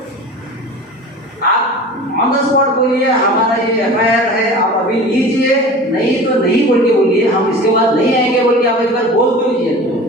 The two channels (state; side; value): normal; both; correlation 0.37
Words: आप ऑन द स्पॉट बोलिए हमारा ये एफआईआर है, आप अभी लीजिए, नहीं तो नहीं बोल के बोलिए, हम इसके बाद नहीं आएंगे बोल के आप एक बार बोल दीजिए।